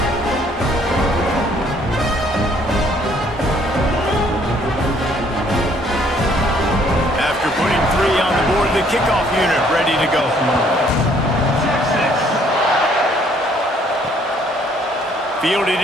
The kickoff unit ready to go. Fielded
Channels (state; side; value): normal; both; correlation 0.63